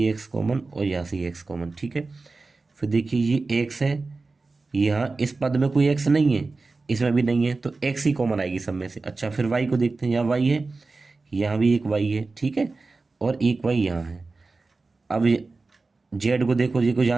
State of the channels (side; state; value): left; quieter; 3.7 dB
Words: एक्स कॉमन और यहाँ से ये एक्स कॉमन। ठीक है। फिर देखिए ये एक्स है, यहाँ इस पद में कोई एक्स नहीं है, इसमें भी नहीं है, तो एक्स ही कॉमन आएगी सब में से। अच्छा फिर वाई को देखते हैं, यहाँ वाई है, यहाँ भी एक वाई है। ठीक है। और एक वाई यहाँ है। अब जेड को देखो, देखो